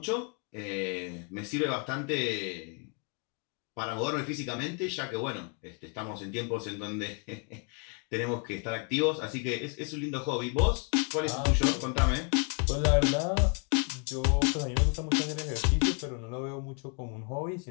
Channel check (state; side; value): quieter; right; 36.7 dB